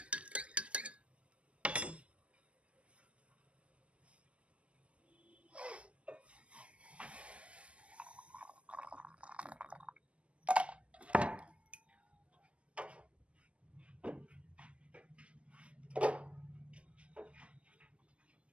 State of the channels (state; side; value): late; left; 0.059 ms